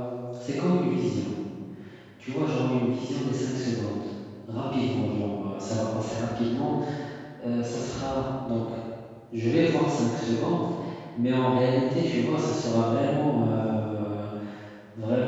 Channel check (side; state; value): both; identical; correlation 1.00